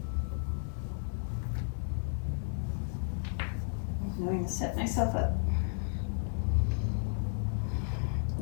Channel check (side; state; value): right; silent; 56 dB below the other